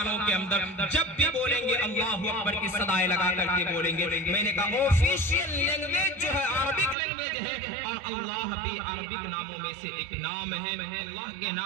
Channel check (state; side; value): drops out; left; at 7.0 s